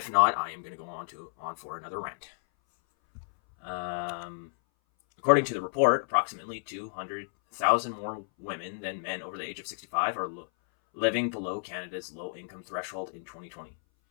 not, I am going to go on for another rant. According to the report, approximately 200,000 more women than men over the age of 65 are living below Canada's low-income threshold in 2020.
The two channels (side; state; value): right; silent; 57 dB below the other